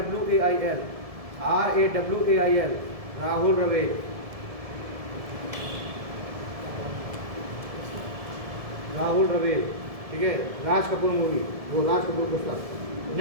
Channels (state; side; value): late; left; 1.7 ms